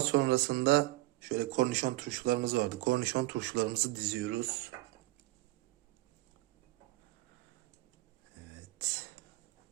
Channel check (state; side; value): quieter; left; 18.8 dB